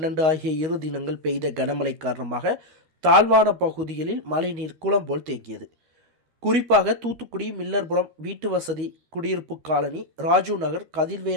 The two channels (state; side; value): late; left; 13 ms